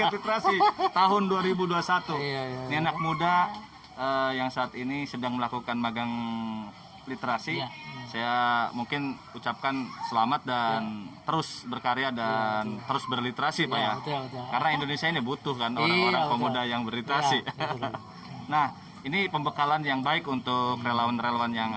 literasi tahun 2021. Iya. Ini anak muda yang saat ini sedang melakukan magang literasi. Iya. Saya mungkin ucapkan selamat dan terus berkarya dan terus berliterasi, Pak Iya, ya. betul. Karena Indonesia ini butuh kan orang-orang Iya, pemuda yang berliterasi. Iya, betul. Nah, ini pembekalan yang baik untuk relawan-relawan yang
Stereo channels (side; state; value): both; identical; correlation 1.00